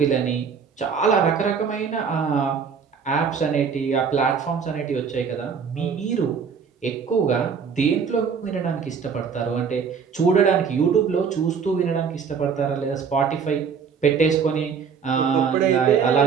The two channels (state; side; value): quieter; left; 6.3 dB